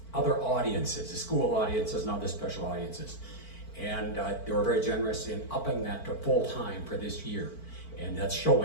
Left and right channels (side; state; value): right; late; 4.5 ms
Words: other audiences, the school audiences and other special audiences. And they were very generous in upping that to full-time for this year. And that's